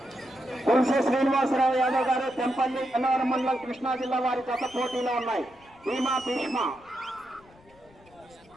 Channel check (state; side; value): noise; left; rumble, 28 dB below the sound